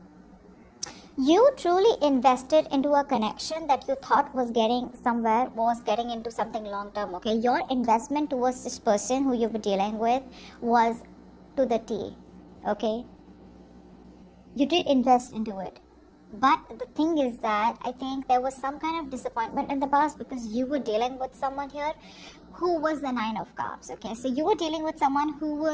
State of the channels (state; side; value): identical; both; correlation 1.00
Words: You truly invested into a connection that you thought was getting somewhere, was getting into something long term, okay? Your investment towards this person who you were dealing with was to the T, okay? You did invest into it. But the thing is that I think there was some kind of disappointment in the past because you were dealing with someone here who was the Nine of Cups. Okay, so you were dealing with someone who